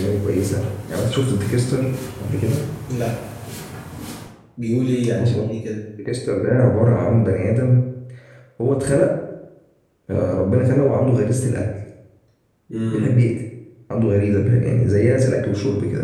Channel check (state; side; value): identical; both; correlation 1.00